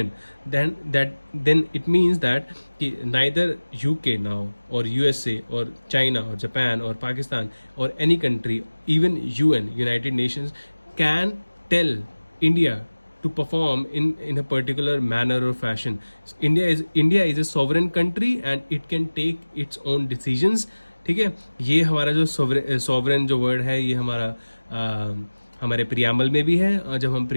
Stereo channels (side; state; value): both; inverted; correlation -1.00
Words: then it means that कि नाइदर यूके नाउ और यूएसए और चाइना और जापान और पाकिस्तान और any country, even UN, United Nations, can tell India to perform in a particular manner or fashion. India is a sovereign country and it can take its own decisions. ठीक है, ये हमारा जो sovereign जो word है ये हमारे preamble में भी है, और जब हम